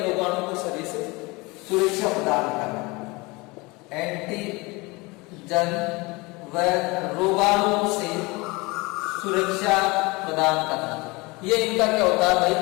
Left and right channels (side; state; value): right; quieter; 24.7 dB